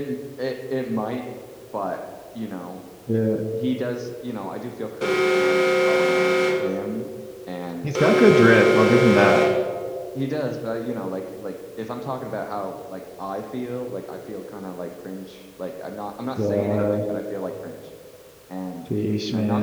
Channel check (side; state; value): both; identical; correlation 1.00